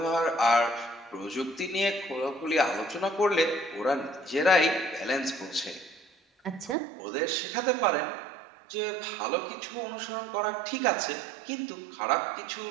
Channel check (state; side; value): drops out; left; at 6.8 s